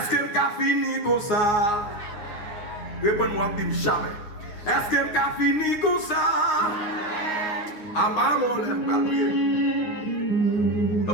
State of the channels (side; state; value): right; late; 9.6 ms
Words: que je fini comme ça? Réponds-moi, dis jamais. Est-ce que je fini comme ça? Ah bah mon Dieu.